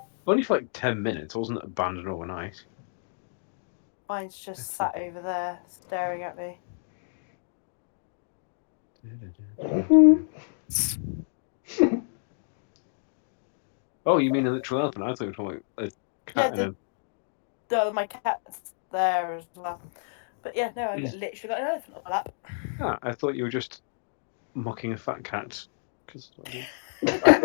Only for like 10 minutes. I wasn't abandoned overnight. Mine's just sat over there staring at me. Oh, you mean a literal elephant? I thought you were talking about a cat. Yeah, my cat's there as well. But yeah, no, I literally got an elephant on my lap. Ah, I thought you were just mocking a fat cat.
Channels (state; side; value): silent; right; digital silence